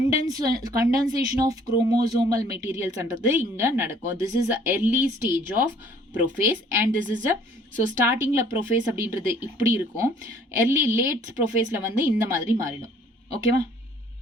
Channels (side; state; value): both; normal; correlation 0.57